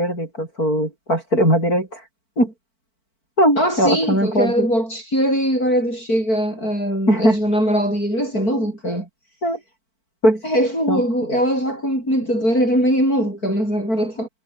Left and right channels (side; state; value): right; late; 4.5 ms